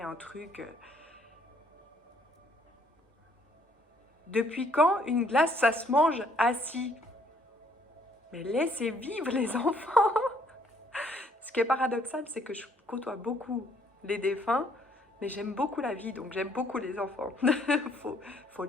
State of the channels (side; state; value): both; normal; correlation 0.65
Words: truc. Depuis quand une glace, ça se mange assis? Mais laissez vivre les enfants. Ce qui est paradoxal, c'est que je côtoie beaucoup les défunts, mais j'aime beaucoup la vie, donc j'aime beaucoup les enfants. faut